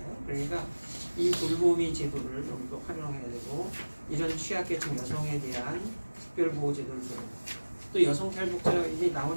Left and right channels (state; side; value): inverted; both; correlation -1.00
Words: 그러니까 이 돌보미 제도를 좀 더 활용해야 되고 이런 취약계층 여성에 대한 특별보호 제도를 또 여성 탈북자 이게